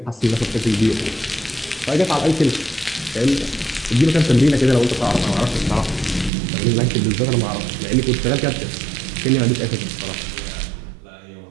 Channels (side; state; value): left; drops out; at 6.3 s